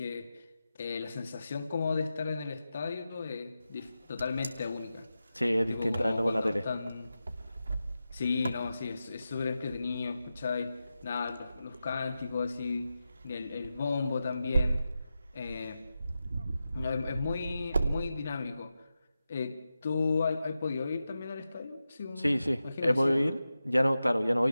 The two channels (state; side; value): inverted; both; correlation -0.92